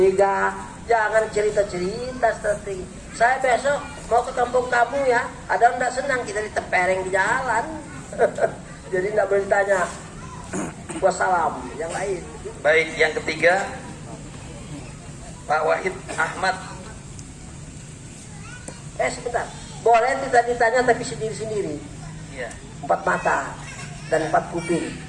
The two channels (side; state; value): both; identical; correlation 1.00